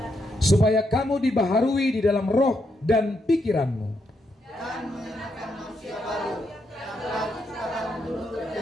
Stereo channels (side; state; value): both; normal; correlation 0.79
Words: supaya kamu dibaharui di dalam roh dan pikiranmu, dan mengenakan manusia baru yang telah diciptakan menurut